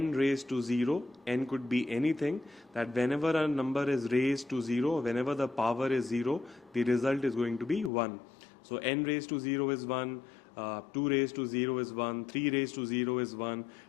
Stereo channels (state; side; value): drops out; right; at 7.9 s